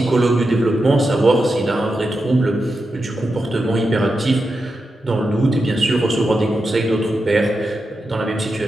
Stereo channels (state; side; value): normal; both; correlation 0.88